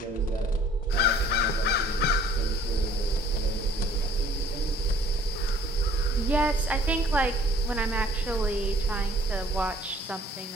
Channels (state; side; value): normal; both; correlation 0.56